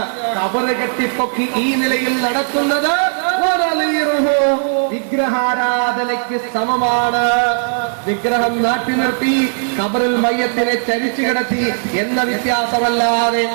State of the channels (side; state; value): left; silent; digital silence